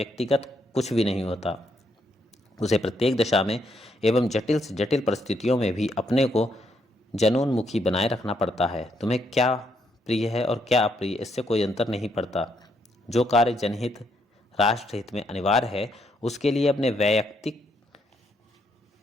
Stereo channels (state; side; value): normal; both; correlation 0.75